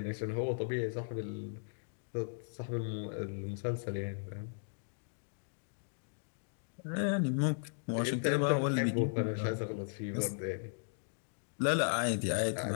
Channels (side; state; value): right; silent; digital silence